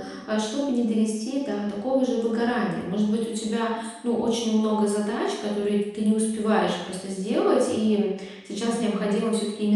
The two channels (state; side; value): identical; both; correlation 1.00